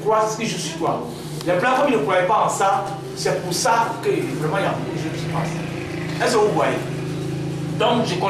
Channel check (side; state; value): both; identical; correlation 1.00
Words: c'est ce que je suis toi. Les blancs, comme ils ne croyaient pas en ça, c'est pour ça que vraiment il y a beaucoup de choses qui se passent. Est-ce que vous voyez? Donc je